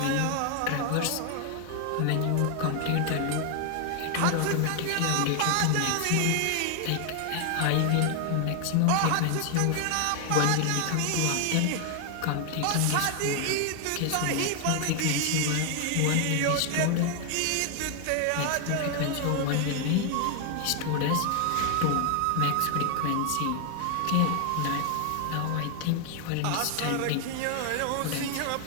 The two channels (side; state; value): both; different; correlation 0.00